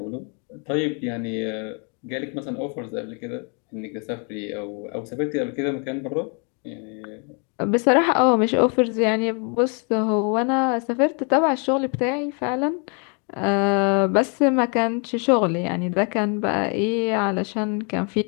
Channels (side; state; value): right; quieter; 37.7 dB